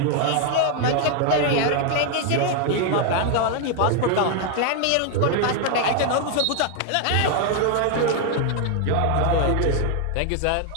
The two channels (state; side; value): different; both; correlation 0.00